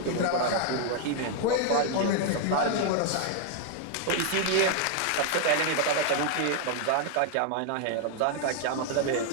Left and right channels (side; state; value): both; different; correlation 0.00